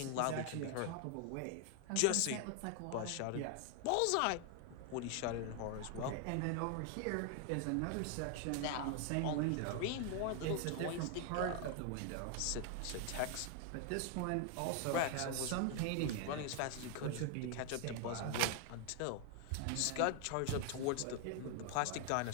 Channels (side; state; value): both; different; correlation 0.00